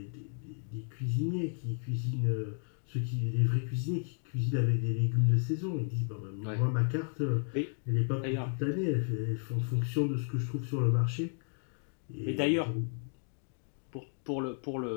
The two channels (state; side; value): silent; right; 56 dB below the other